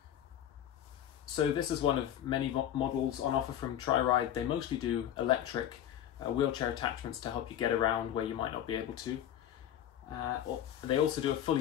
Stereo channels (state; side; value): quieter; right; 10.7 dB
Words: So this is one of many models on offer from Triride. They mostly do electric wheelchair attachments to help you get around where you might not be able to. They also do a